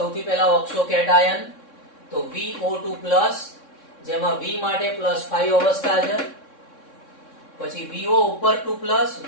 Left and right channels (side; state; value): right; late; 3.6 ms